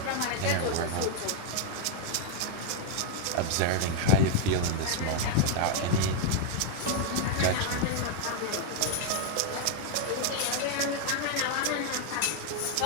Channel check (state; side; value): different; both; correlation 0.00